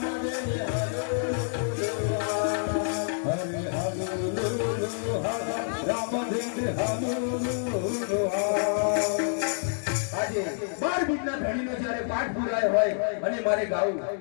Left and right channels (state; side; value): silent; right; digital silence